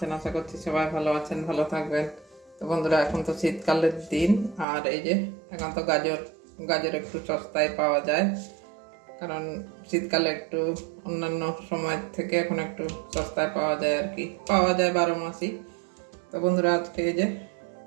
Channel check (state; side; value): drops out; left; at 4.7 s